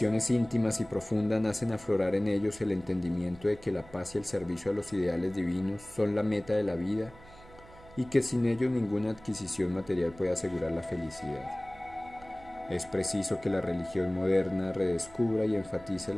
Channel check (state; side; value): noise; right; hum, 21 dB below the sound